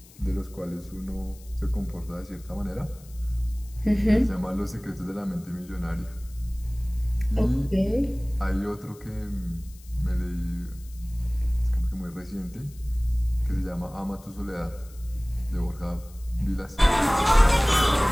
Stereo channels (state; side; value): noise; left; hiss, 24 dB below the sound